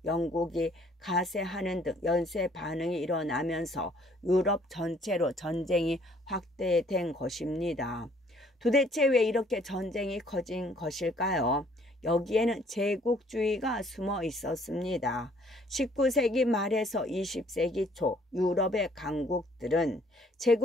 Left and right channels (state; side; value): normal; both; correlation 0.61